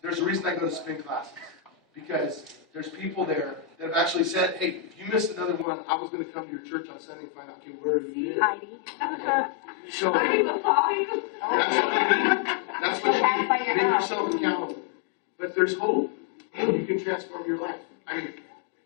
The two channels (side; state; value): right; drops out; at 5.7 s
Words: There's a reason I go to spin classes. Because there's people there that have actually said, hey, if you missed another one, I was going to come to your church on Sunday and find out, okay, where have you been? Heidi. So, Heidi will call you. That's what you need. Make yourself accountable. But there's hope. You can transform your life.